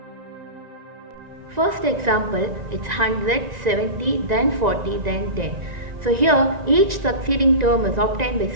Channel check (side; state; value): left; late; 1.9 ms